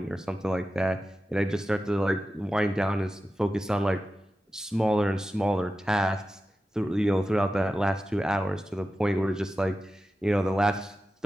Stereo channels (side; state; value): both; normal; correlation 0.92